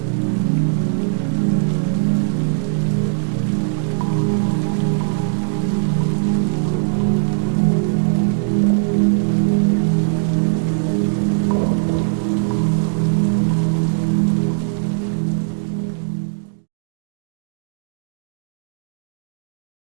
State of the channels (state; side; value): silent; left; digital silence